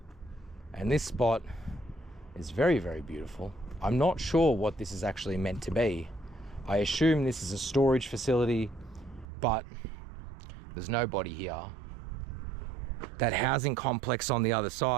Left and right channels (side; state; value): left; drops out; at 9.2 s